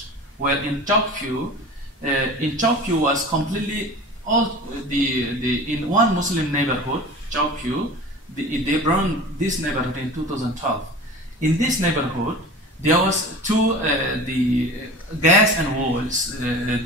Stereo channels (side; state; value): both; normal; correlation 0.36